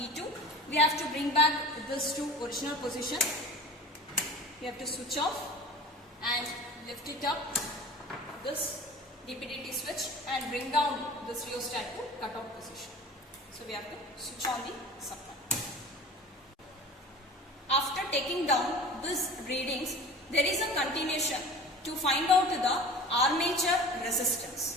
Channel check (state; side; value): normal; both; correlation 0.39